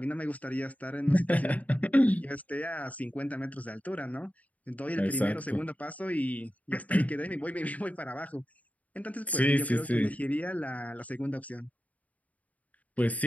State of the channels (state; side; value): late; right; 0.071 ms